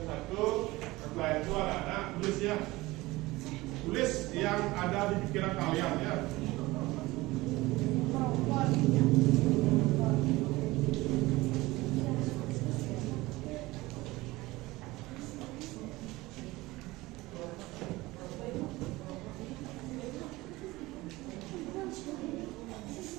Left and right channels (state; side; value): quieter; left; 20.0 dB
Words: satu, setelah itu anak-anak tulis ya. Tulis yang ada di pikiran kalian ya.